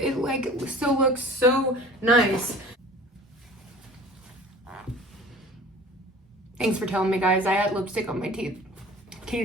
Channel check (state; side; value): normal; both; correlation 0.44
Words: like still looks so nice. Thanks for telling me, guys. I had lipstick on my teeth. Can